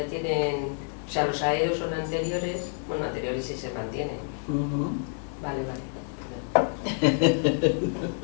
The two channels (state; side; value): silent; right; 58 dB below the other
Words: tienen... O sea, los aeos son anteriores, bueno, anteriores sí se mantienen. Vale.